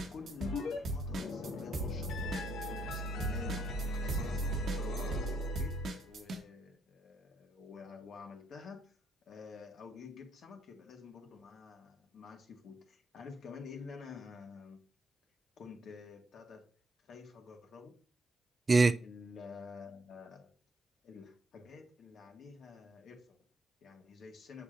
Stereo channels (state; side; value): normal; both; correlation 0.73